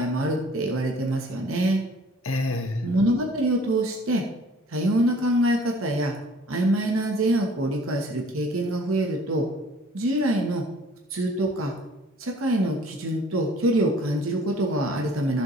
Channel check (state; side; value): normal; both; correlation 0.53